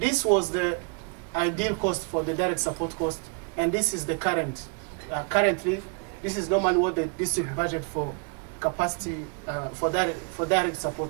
was the ideal cost for the direct support cost, and this is the current. Currently, this is normally what the district budget for capacity for direct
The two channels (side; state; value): left; quieter; 36.6 dB